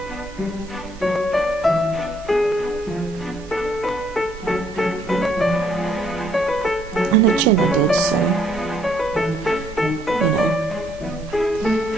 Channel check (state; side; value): normal; both; correlation 0.67